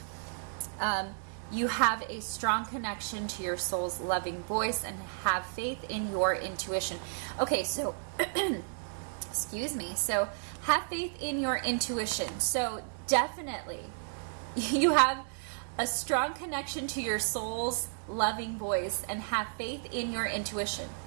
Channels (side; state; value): left; silent; digital silence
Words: you have a strong connection to your soul's loving voice and have faith in your intuition. Okay, so, excuse me. So, have faith in your intuition. So, definitely, you have a strong connection to your soul's loving voice and have faith in your intuition.